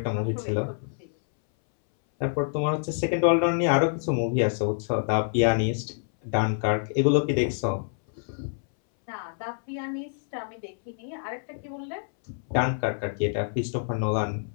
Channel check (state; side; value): silent; right; 60 dB below the other